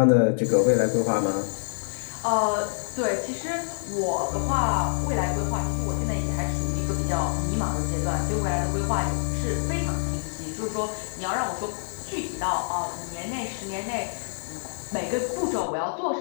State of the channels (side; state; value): right; silent; digital silence